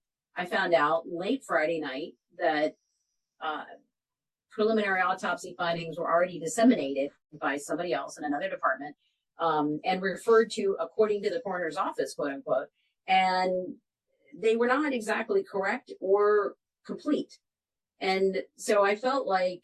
I found out late Friday night that preliminary autopsy findings were already disseminated by somebody else in another department and referred to according to the coroner's office, quote unquote. And they were not exactly correct or complete. And so I felt like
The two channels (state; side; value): identical; both; correlation 1.00